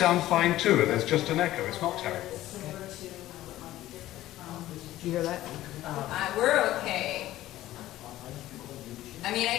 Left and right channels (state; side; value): quieter; right; 15.0 dB